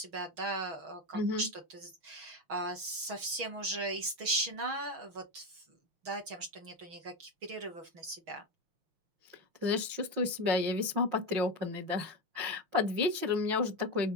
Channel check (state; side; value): late; left; 6.2 ms